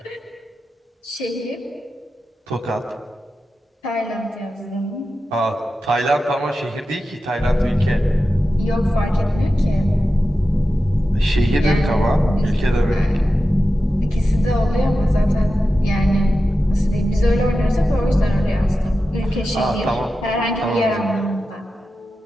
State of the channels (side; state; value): both; normal; correlation 0.92